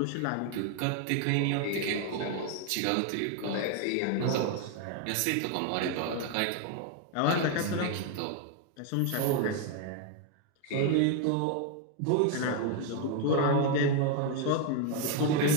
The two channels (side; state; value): both; different; correlation 0.01